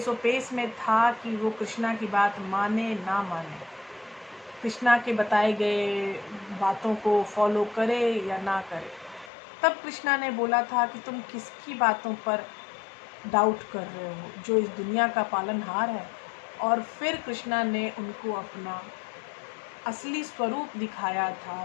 में था कि वो कृष्णा की बात माने ना माने, कृष्णा के बताए गए बातों को फॉलो करे या ना करे। तब कृष्णा ने बोला था कि तुम किसकी बातों पर डाउट कर रहे हो, जो इस दुनिया का पालनहार है। और फिर कृष्णा ने उनको अपना असली स्वरूप दिखाया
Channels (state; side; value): drops out; right; at 9.3 s